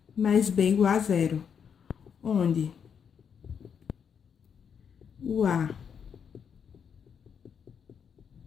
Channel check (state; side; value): quieter; right; 7.2 dB